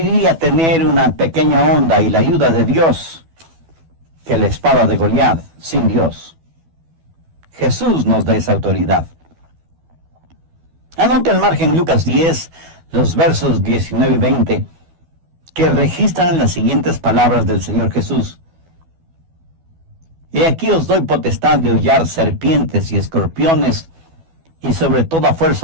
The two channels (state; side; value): late; left; 12 ms